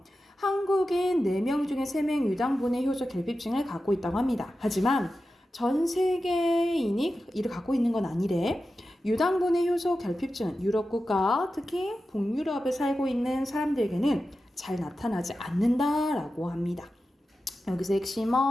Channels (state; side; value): normal; both; correlation 0.92